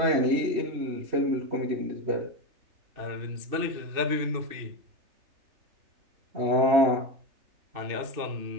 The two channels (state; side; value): late; left; 2.7 ms